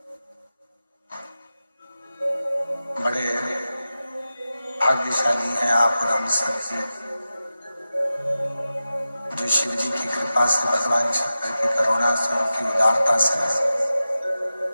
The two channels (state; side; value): inverted; both; correlation -0.94